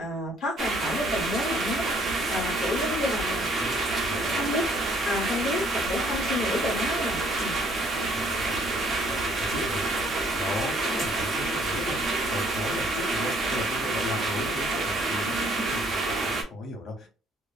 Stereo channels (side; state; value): both; normal; correlation 0.62